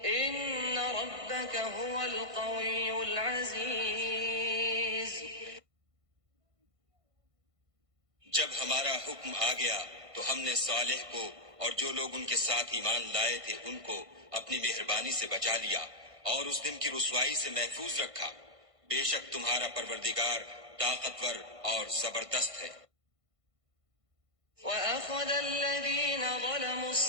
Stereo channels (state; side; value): late; left; 1.5 ms